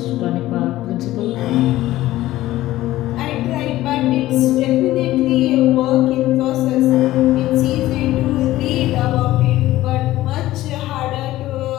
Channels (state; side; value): quieter; right; 15.7 dB